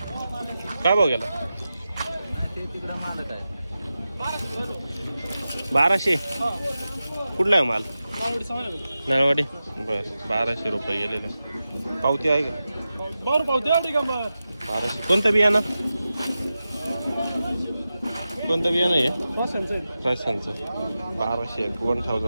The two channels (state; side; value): inverted; both; correlation -0.93